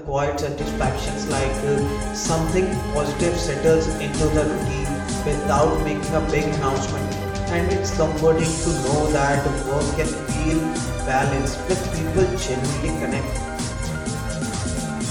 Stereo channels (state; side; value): identical; both; correlation 1.00